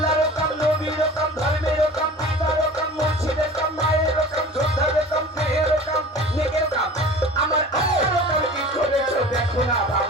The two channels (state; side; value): normal; both; correlation 0.40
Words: কাম নবীর কাম ধর্মের কাম পিতার কাম মুর্শিদের কাম মায়ের কাম যোদ্ধার কাম দেহের কাম নেকের কাম আমার আল্লাহর কাম কি করেছো দেখো না